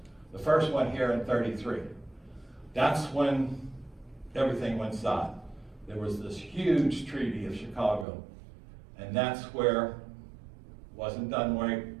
the first one here in 33, that's when everything went south. There was this huge Treaty of Chicago, and that's where wasn't done right.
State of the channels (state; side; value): drops out; left; at 8.1 s